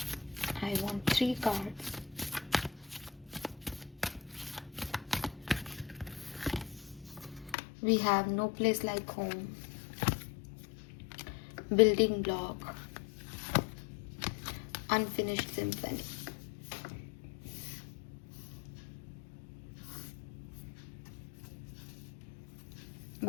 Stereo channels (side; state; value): right; drops out; at 7.6 s